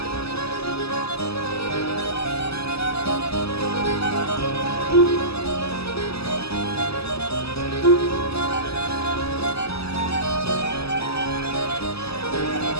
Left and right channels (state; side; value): late; right; 0.78 ms